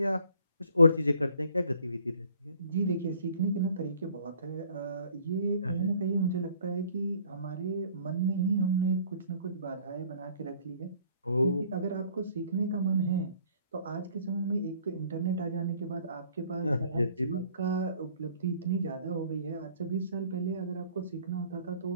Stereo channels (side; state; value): both; inverted; correlation -0.57